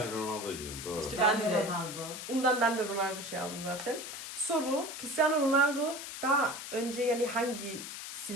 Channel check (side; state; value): left; noise; hiss, 8 dB below the sound